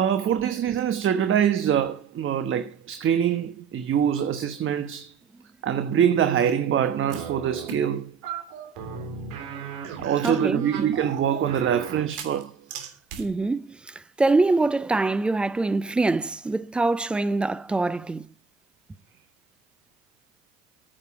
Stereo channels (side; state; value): left; quieter; 6.0 dB